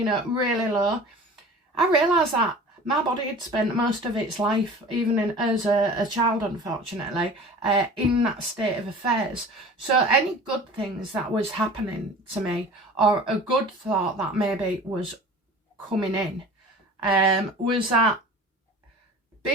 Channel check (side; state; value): both; normal; correlation 0.41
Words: low, I realised that my body had spent most of its life, even as a child, unfortunately, in that state of affairs. So any good things that was happening to me, or a good thought that maybe was coming in, was that